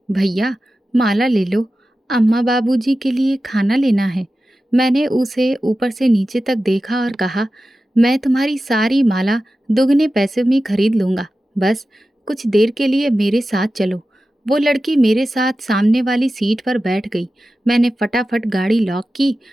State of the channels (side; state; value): both; normal; correlation 0.94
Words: भैया माला ले लो, अम्मा बाबूजी के लिए खाना लेना है। मैंने उसे ऊपर से नीचे तक देखा और कहा, मैं तुम्हारी सारी माला दुगने पैसे में खरीद लूँगा, बस कुछ देर के लिए मेरे साथ चलो। वो लड़की मेरे साथ सामने वाली सीट पर बैठ गई। मैंने फटाफट गाड़ी लॉक की